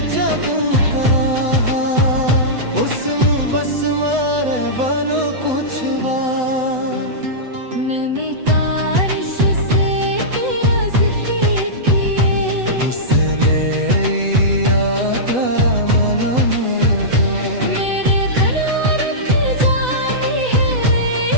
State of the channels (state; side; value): late; left; 7.9 ms